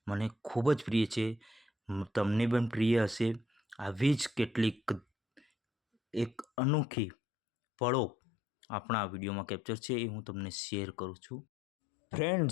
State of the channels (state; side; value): drops out; right; at 6.5 s